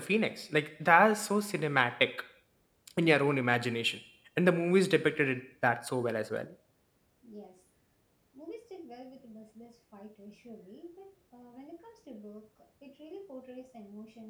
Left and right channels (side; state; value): both; identical; correlation 1.00